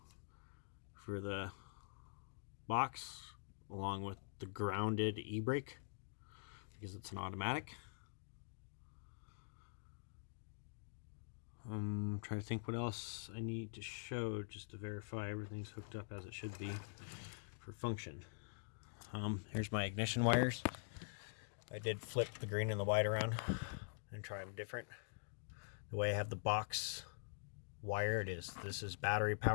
for the box, along with the grounded e-brake because it's an automatic. I'm trying to think what else I need to show just to verify everything's hooked up as it should be for function. Here's my ignition wires. I did flip the green and the white around and try them different. The way I have the box wired is this is battery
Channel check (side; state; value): right; silent; digital silence